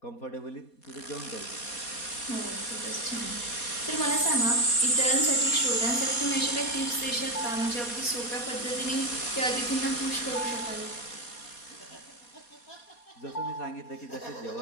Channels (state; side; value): late; right; 4.2 ms